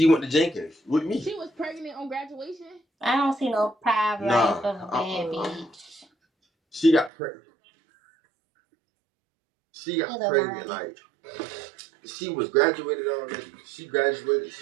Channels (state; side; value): drops out; left; at 7.1 s